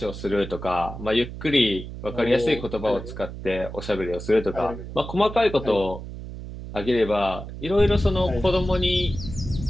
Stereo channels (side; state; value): right; noise; hum, 10 dB below the sound